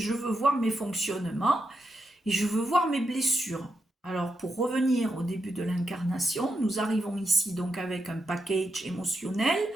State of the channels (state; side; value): normal; both; correlation 0.84